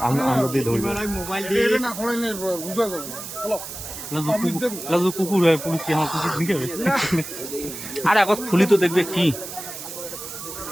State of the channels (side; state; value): right; noise; hiss, 10 dB below the sound